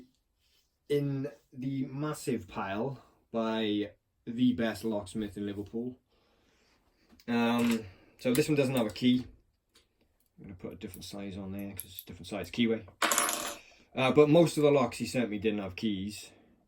in the massive pile by the best locksmith in Liverpool. So this one doesn't have a key. I'm going to put a different size on there because it's a different size keyway. But most of the locks he sent me didn't have keys.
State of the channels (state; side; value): identical; both; correlation 1.00